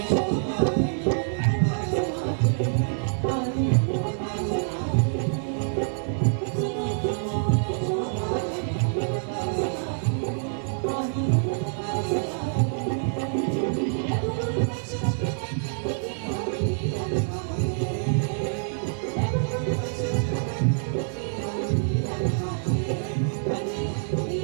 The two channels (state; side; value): silent; left; digital silence